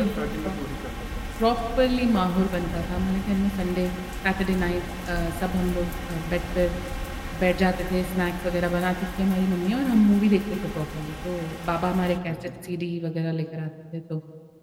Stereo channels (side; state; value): both; identical; correlation 1.00